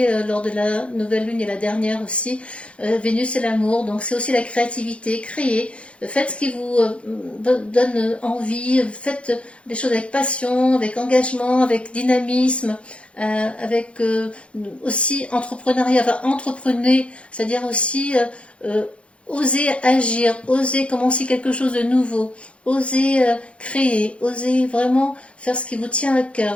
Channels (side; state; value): right; late; 0.060 ms